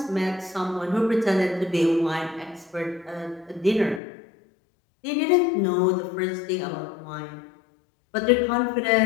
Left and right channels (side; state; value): right; drops out; at 4.0 s